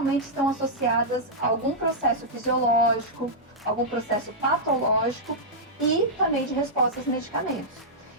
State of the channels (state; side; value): normal; both; correlation -0.10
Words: estão associadas a algum processo fisiológico, algum processo patológico e também de respostas a medicamentos.